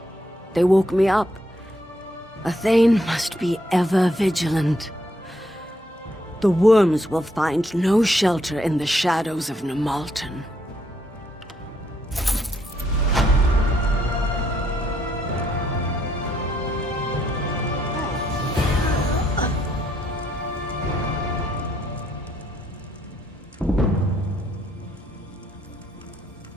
They woke me up. A Thane must be ever vigilant. The worms will find no shelter in the shadows of Nimalten.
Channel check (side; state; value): both; normal; correlation 0.73